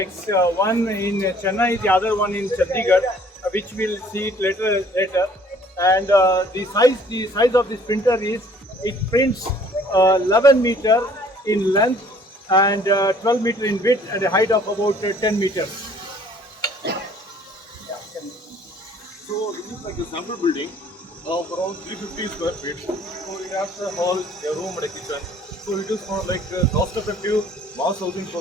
one in Chennai, the other one in Chandigarh, which we'll see it later. And the size of this printer is, it prints 11 meter in length and 12 meter in width and a height of about 10 meters. So this is like a sample building of around 350 square feet. So it has a hall, a room and a kitchen. So it is for like cost-effective mass housing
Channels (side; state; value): both; normal; correlation 0.57